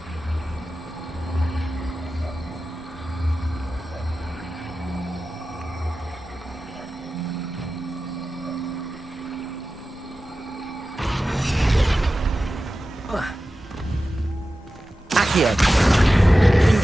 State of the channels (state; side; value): normal; both; correlation 0.94